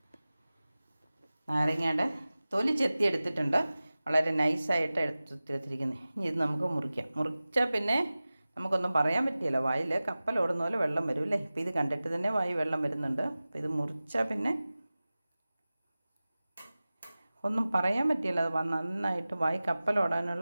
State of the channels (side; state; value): both; inverted; correlation -0.97